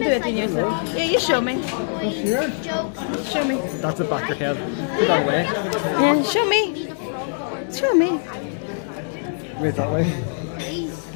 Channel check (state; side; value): silent; right; 64 dB below the other